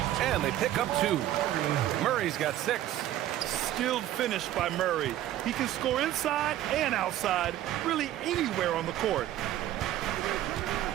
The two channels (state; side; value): quieter; left; 13.2 dB